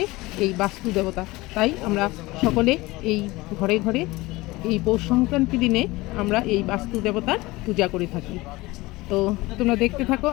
এই বাস্তু দেবতা। তাই আমরা সকলে এই ঘরে ঘরে এই পৌষ সংক্রান্তি দিনে আমরা এই বাস্তু দেবতার পূজা করে থাকি। তো তোমরা দেখতে থাকো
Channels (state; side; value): quieter; right; 20.8 dB